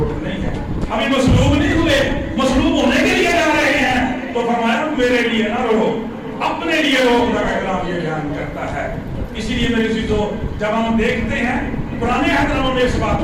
نہیں ہے۔ ابھی مصلوب نہیں ہوئے، مصلوب ہونے کے لیے جا رہے ہیں تو فرمایا میرے لیے نہ رو، اپنے لیے رو۔ خدا کا کلام یہ بیان کرتا ہے۔ اسی لیے میرے عزیزوں، جب ہم دیکھتے ہیں پرانے عہد میں اس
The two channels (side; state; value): both; identical; correlation 1.00